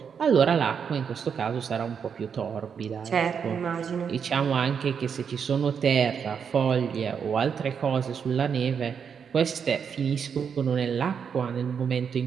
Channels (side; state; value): left; quieter; 6.9 dB